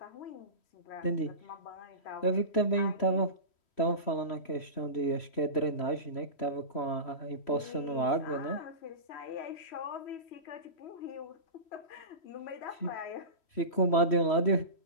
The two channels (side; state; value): right; late; 3.1 ms